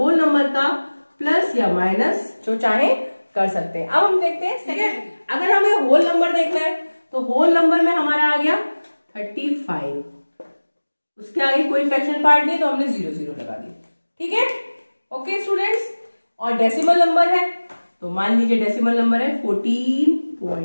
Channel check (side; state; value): both; inverted; correlation -1.00